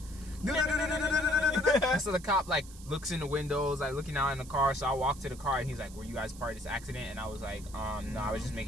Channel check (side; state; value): right; noise; hiss, 19 dB below the sound